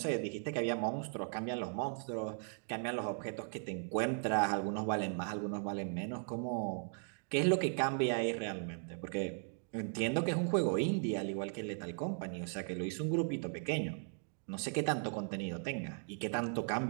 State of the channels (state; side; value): silent; left; 53 dB below the other